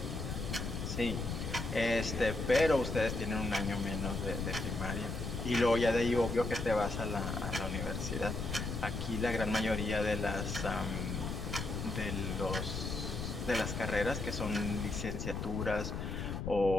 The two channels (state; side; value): noise; left; rumble, 4 dB below the sound